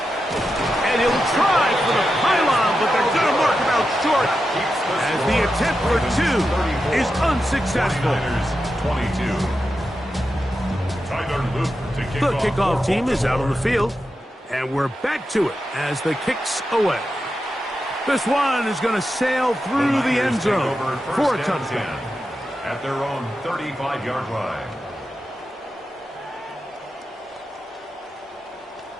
And he'll try for the pylon, but they're going to mark him out short as the attempt for 2 is unsuccessful. 22. The kickoff team is out on the field, and we're back to it as the kick's away. This one is going to sail through the end zone for a touchdown. At their own 35-yard line.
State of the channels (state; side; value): normal; both; correlation 0.89